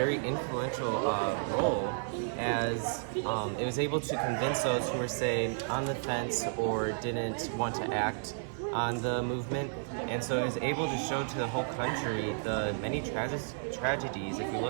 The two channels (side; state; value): left; silent; digital silence